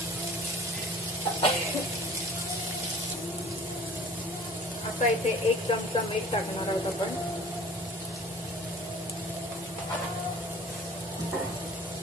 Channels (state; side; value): normal; both; correlation 0.47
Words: आता इथे 1 चमचा मीठ टाकणार आहोत आपण।